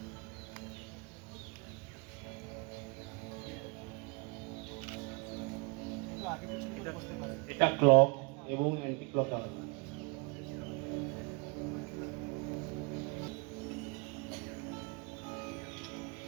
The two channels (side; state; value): left; quieter; 31.1 dB